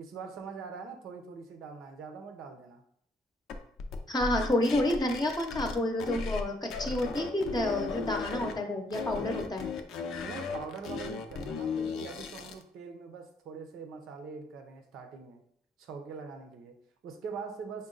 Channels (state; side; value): normal; both; correlation 0.68